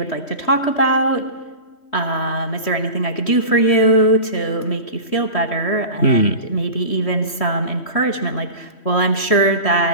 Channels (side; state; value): right; late; 3.1 ms